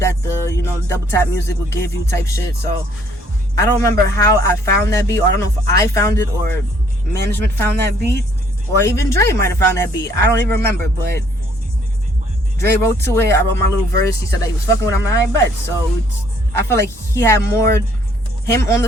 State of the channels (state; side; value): normal; both; correlation 0.64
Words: the double tap music would give you type shit. So I don't remember how I found that beat, or I don't know if I found it or management found that beat, or even Dre might have found that beat. I don't even remember, but Dre wrote to it. I wrote my little verse. He said that he was fucking with him, and I bet. So I feel like he had more him on